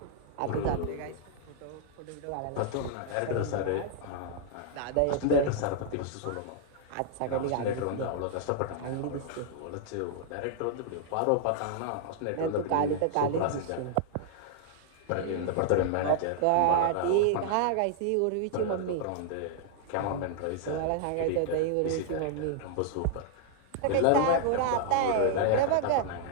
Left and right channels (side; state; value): both; different; correlation -0.01